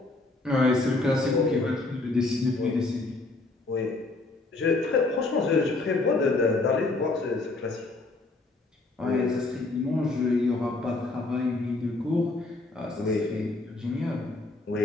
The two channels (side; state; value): right; quieter; 3.2 dB